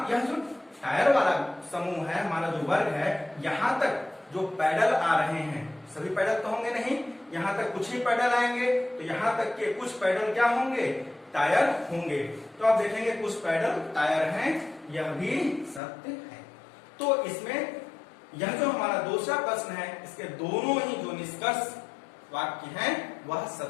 यह जो टायर वाला समूह है, हमारा जो वर्ग है, यहाँ तक जो पैडल आ रहे हैं, सभी पैडल तो होंगे नहीं, यहाँ तक कुछ ही पैडल आएंगे, तो यहाँ तक के कुछ पैडल क्या होंगे, टायर होंगे। तो आप देखेंगे कुछ पैडल टायर हैं, यह भी सत्य है। तो इसमें यह जो हमारा दूसरा प्रश्न है इसके दोनों ही जो निष्कर्ष वाक्य हैं वह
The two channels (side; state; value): right; drops out; at 15.8 s